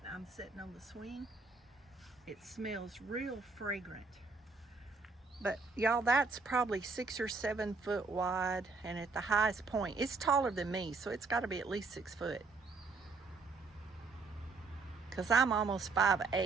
I'm sitting on the swing, it smells real fragrant. But y'all, that's probably 6 or 7 foot wide, and at the highest point, it's taller than me, so it's got to be at least 6 foot. Because I'm almost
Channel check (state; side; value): quieter; left; 4.2 dB